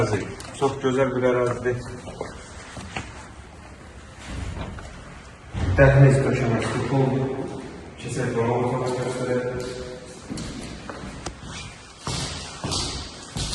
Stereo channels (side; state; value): both; identical; correlation 1.00